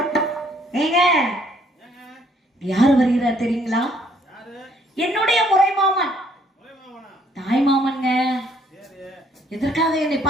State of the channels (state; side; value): normal; both; correlation 0.65